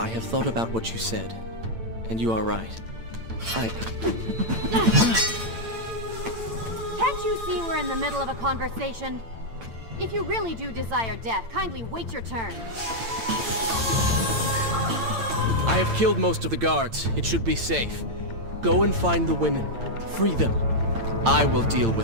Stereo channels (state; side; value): late; left; 8.8 ms